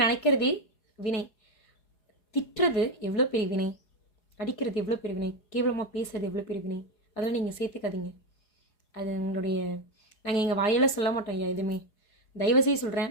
நினைக்கிறதே வினை. திட்டுறது எவ்வளோ பெரிய வினை, அடிக்கிறது எவ்வளோ பெரிய வினை, கேவலமாக பேசுறது எவ்வளோ பெரிய வினை. அதெல்லாம் நீங்கள் சேர்த்துக்காதீங்க. அது எங்களுடைய நாங்கள் எங்கள் வாயால் சொல்ல மாட்டோம் ஐயா எதுவுமே. தயவுசெய்து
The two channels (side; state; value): right; late; 4.8 ms